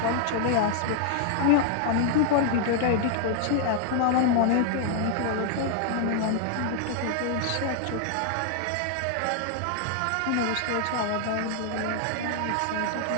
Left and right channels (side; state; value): both; different; correlation 0.00